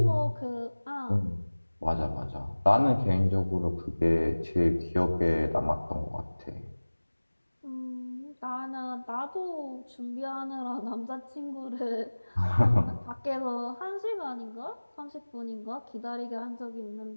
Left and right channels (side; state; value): both; inverted; correlation -1.00